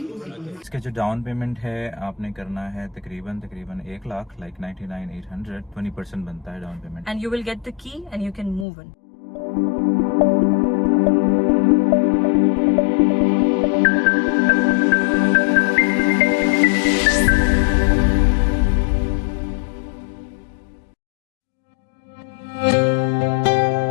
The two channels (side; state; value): right; drops out; at 8.7 s